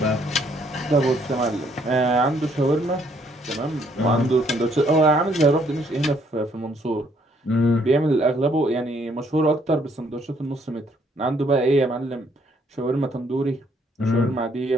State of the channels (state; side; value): normal; both; correlation 0.67